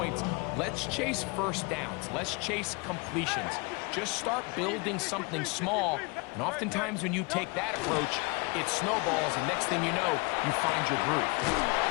Let's chase first downs. Let's chase completions. Just start building something small. And oftentimes when you take that approach, it snowballs, and next thing you know, you find your groove.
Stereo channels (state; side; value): quieter; right; 29.0 dB